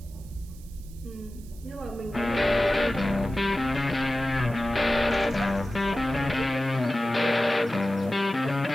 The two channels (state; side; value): noise; right; hiss, 24 dB below the sound